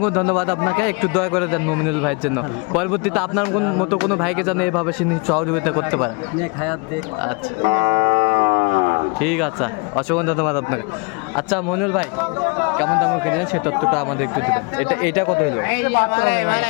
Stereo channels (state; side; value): quieter; right; 31.6 dB